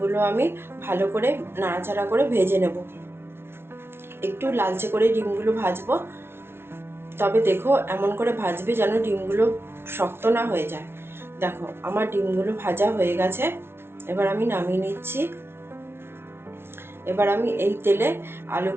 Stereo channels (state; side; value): late; left; 0.12 ms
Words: আমি ভালো করে নাড়াচাড়া করে ভেজে নেব। একটু লালচে করে ডিমগুলো ভাজবো। তবে দেখো, এমন করে ভাজবে যেন ডিমগুলো শক্ত না হয়ে যায়। দেখো, আমার ডিমগুলো ভাজা হয়ে গেছে। এবার আমি নামিয়ে নিচ্ছি। এবার আমি এই তেলে